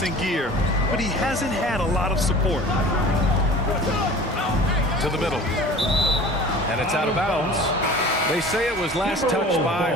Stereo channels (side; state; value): both; normal; correlation 0.42